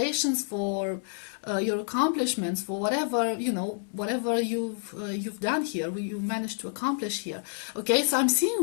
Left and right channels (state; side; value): silent; right; 59 dB below the other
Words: for your accomplishments, for whatever you've done here, you managed to accomplish here. Okay, so I'm